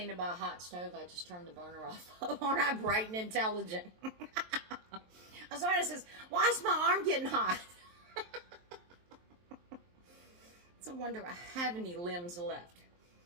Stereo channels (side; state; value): left; late; 23 ms